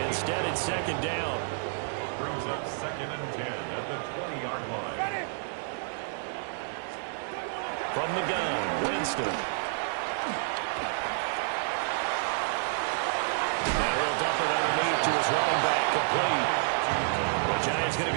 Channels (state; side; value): silent; left; digital silence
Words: Instead, it's 2nd down. Brings up 2nd and 10 at the 20-yard line. Ready? From the gun, Winston. Now he'll dump it underneath to his running back, complete. The Giants going to